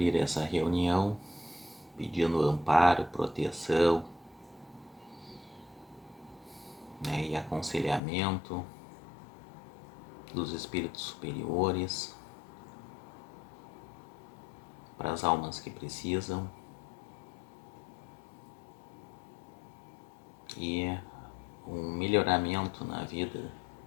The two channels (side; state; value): right; drops out; at 8.0 s